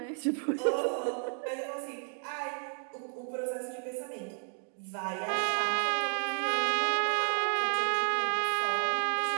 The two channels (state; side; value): silent; left; 56 dB below the other